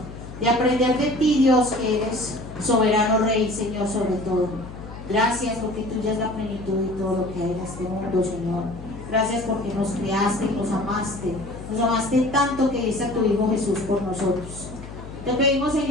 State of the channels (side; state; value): left; noise; hum, 13 dB below the sound